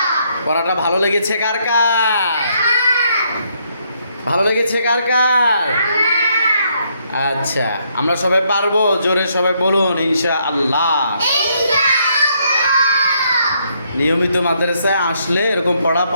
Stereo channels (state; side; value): inverted; both; correlation -0.73